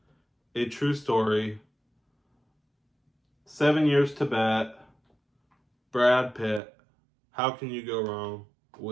a true story. 7 Years Tibet, Brad Pitt. How can you go wrong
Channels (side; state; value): left; drops out; at 6.6 s